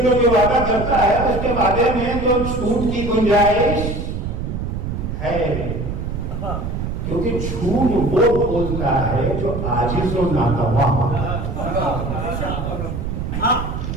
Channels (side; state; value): right; noise; rumble, 4 dB below the sound